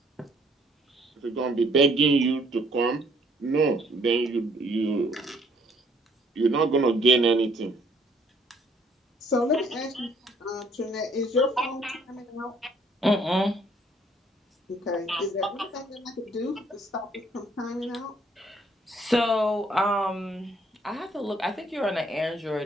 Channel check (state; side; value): normal; both; correlation 0.63